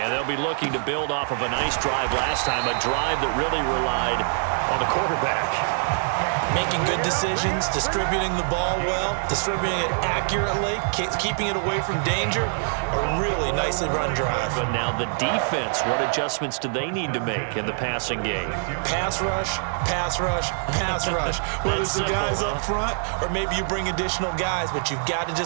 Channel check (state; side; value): silent; left; digital silence